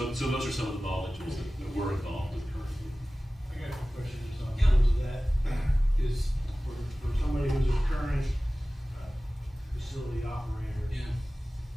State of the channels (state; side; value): normal; both; correlation 0.97